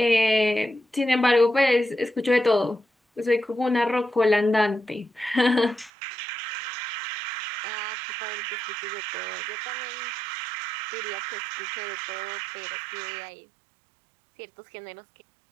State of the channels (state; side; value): drops out; left; at 5.9 s